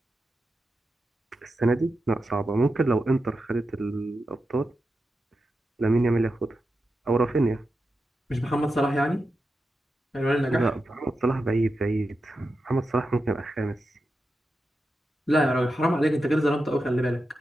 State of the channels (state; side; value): normal; both; correlation 0.89